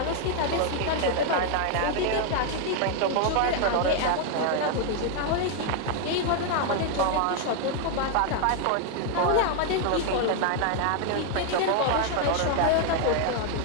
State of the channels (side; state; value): both; different; correlation 0.01